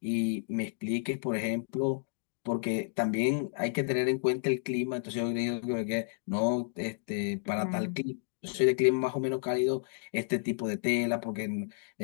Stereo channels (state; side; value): silent; right; digital silence